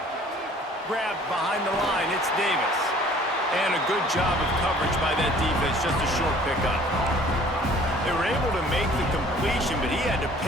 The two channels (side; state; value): both; normal; correlation 0.53